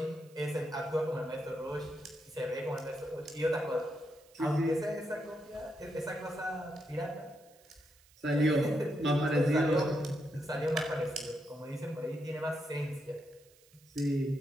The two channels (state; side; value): noise; right; hiss, 28 dB below the sound